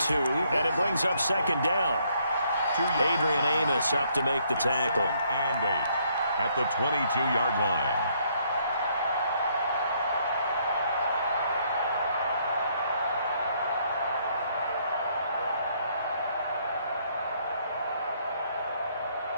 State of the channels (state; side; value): inverted; both; correlation -0.69